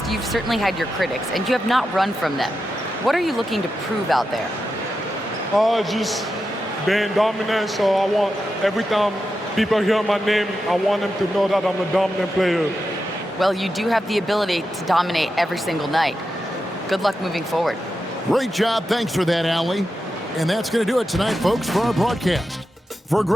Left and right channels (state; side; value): normal; both; correlation 0.89